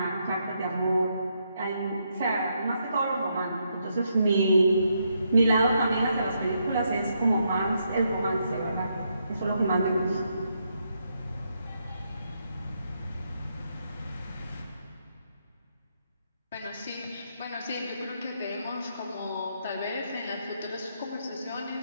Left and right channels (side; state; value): both; inverted; correlation -0.78